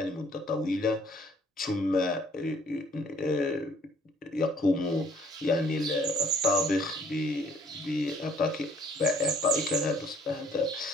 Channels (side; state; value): both; normal; correlation 0.59